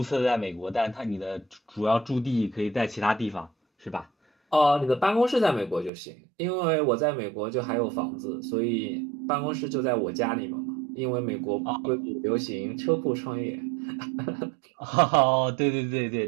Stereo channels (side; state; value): left; drops out; at 5.9 s